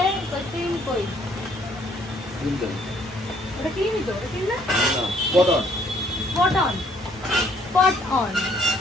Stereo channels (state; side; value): normal; both; correlation 0.64